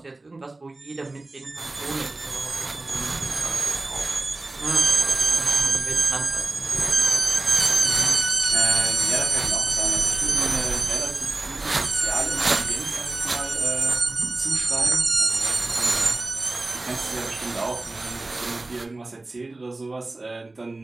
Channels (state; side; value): quieter; left; 3.1 dB